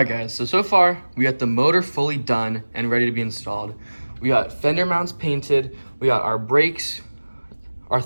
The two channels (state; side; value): inverted; both; correlation -1.00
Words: guys, so far, we got the motor fully done and ready to be installed. We got fender mounts painted, we got our brakes, our